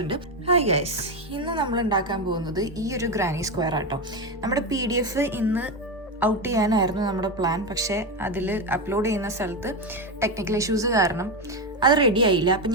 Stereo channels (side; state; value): both; normal; correlation 0.12